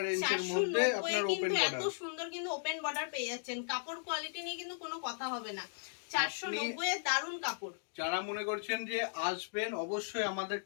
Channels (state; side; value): silent; right; digital silence